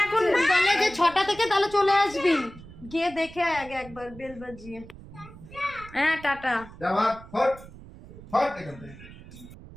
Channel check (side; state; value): right; noise; rumble, 18 dB below the sound